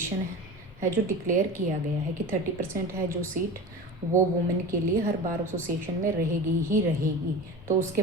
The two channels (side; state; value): both; normal; correlation 0.31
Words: है जो डिक्लेयर किया गया है कि 30% है जो सीट वो वुमेन के लिए हर बार एसोसिएशन में रहेगी ही रहेगी। तो उसके